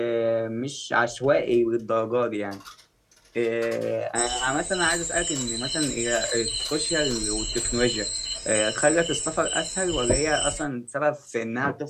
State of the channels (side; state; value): both; identical; correlation 1.00